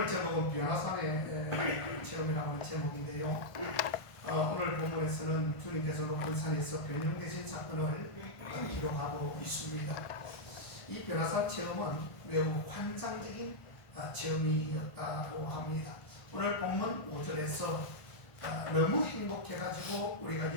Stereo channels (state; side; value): late; right; 1.5 ms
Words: 제목은 변화산의 체험이라는 제목인데요. 오늘 본문에서는 주님께서 높은 산에서 변형되신 사건을 기록하고 있습니다. 이 변화산 체험은 매우 환상적인 체험이었다고 합니다. 오늘 본문 5절에서 너무 행복해가지고 우리가